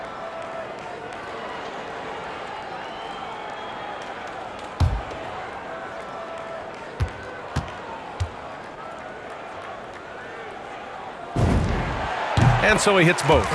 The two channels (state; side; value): identical; both; correlation 1.00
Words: And so he hits both.